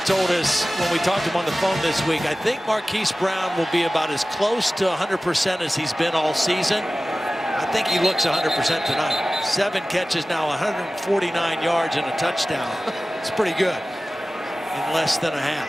told us when we talked to him on the phone this week, I think Marquise Brown will be about as close to 100% as he's been all season. I think he looks 100% tonight. 7 catches now, 149 yards and a touchdown. It's pretty good in less than a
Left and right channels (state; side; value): normal; both; correlation 0.97